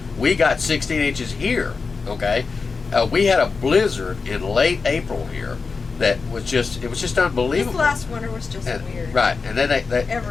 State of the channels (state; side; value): quieter; right; 4.7 dB